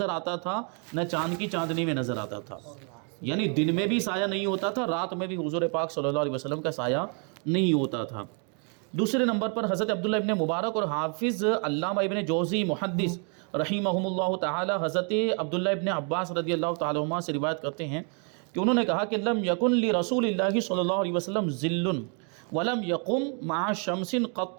آتا تھا نہ چاند کی چاندنی میں نظر آتا تھا، یعنی دن میں بھی سایہ نہیں ہوتا تھا، رات میں بھی حضور پاک صلی اللہ علیہ وسلم کا سایہ نہیں ہوتا تھا۔ دوسرے نمبر پر حضرت عبداللہ ابن مبارک اور حافظ علامہ ابن جوزی محدث رحمہم اللہ تعالی حضرت عبداللہ ابن عباس رضی اللہ تعالی عنہ سے روایت کرتے ہیں کہ انہوں نے کہا کہ لم یکن لرسول اللہ صلی اللہ علیہ وسلم ظل ولم یقم مع شمس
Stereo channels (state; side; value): quieter; left; 39.4 dB